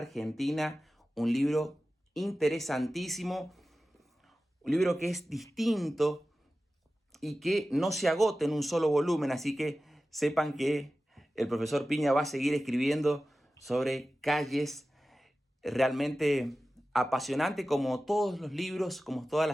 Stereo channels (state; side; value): normal; both; correlation 0.95